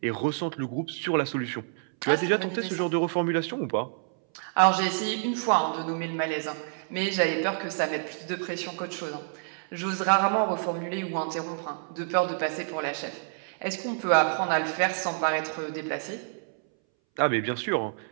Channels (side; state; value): left; silent; 59 dB below the other